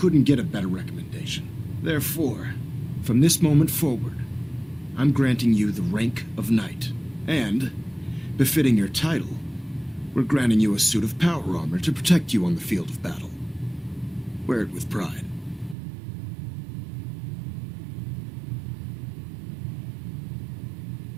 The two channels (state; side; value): drops out; left; at 15.8 s